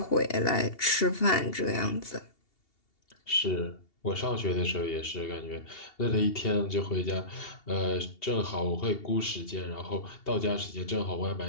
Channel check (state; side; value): late; right; 2.7 ms